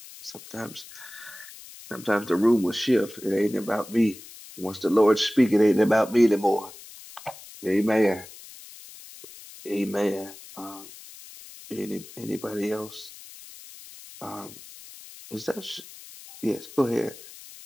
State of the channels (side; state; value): left; noise; hiss, 17 dB below the sound